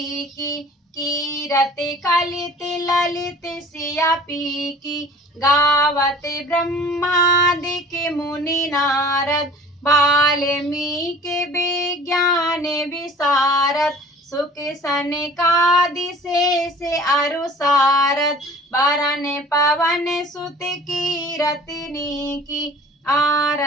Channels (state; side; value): normal; both; correlation 0.47